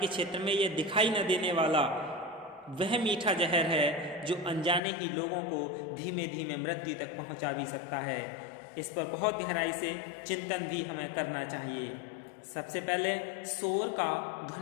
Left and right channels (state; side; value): drops out; right; at 4.8 s